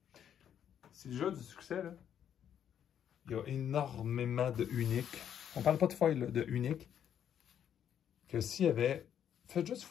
Si le jeu a du succès, là, il y a énormément de uniques. On ne parle pas de foil, là, de uniques. Que s'il y avait... Faites juste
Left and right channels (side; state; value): right; quieter; 9.3 dB